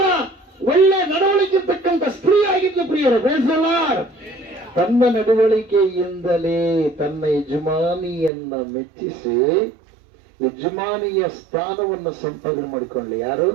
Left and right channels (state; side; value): drops out; left; at 8.3 s